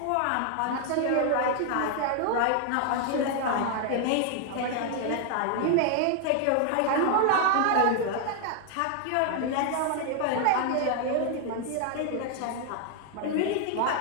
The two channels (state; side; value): different; both; correlation 0.00